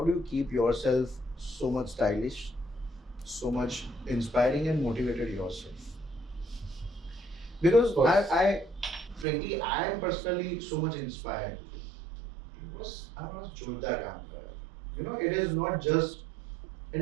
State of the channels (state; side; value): drops out; left; at 9.2 s